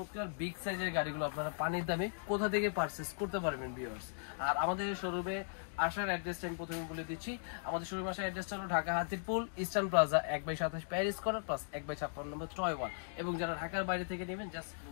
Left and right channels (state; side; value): silent; right; digital silence